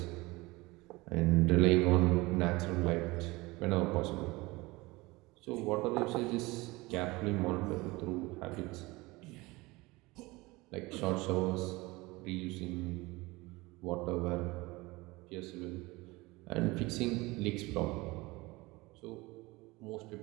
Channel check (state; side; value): quieter; left; 22.2 dB